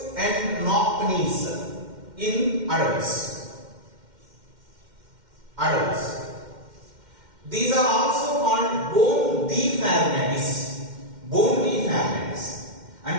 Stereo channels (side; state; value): left; late; 2.1 ms